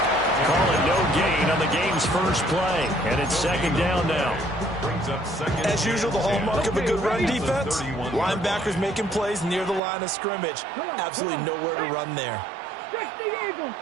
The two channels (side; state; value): left; drops out; at 9.8 s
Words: Call it no gain on the game's first play, and it's second down now. As usual, the hallmark of a good run defense, linebackers making plays near the line of scrimmage. Absolutely nowhere to run there. 60 Eagles,